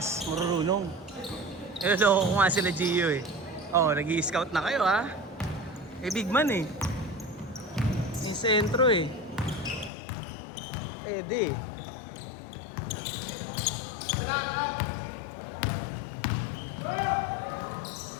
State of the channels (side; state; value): right; drops out; at 9.9 s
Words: marurunong. Loko ko nga sila Gio eh. Oh, nag-i-scout na kayo ha. Eh, big man eh. Yung sentro eh. Pwede eh.